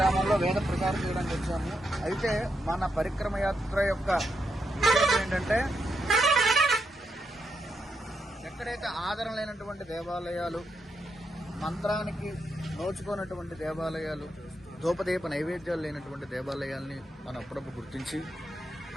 వేద ప్రచారం చేయడానికి వచ్చాము. అయితే మన పరిక్రమ యాత్ర యొక్క విషయం ఏంటంటే, ఎక్కడైతే ఆదరణ లేనటువంటి దేవాలయాలు, మంత్రానికి నోచుకున్నటువంటి దేవాలయాలు, ధూపదీప నైవేద్యాలు లేనటువంటి దేవాలయాల్ని మనం అప్పుడప్పుడు గుర్తించి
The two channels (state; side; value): normal; both; correlation 0.82